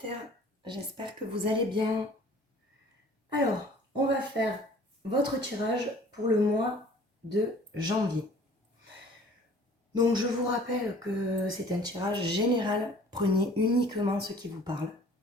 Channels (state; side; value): normal; both; correlation 0.51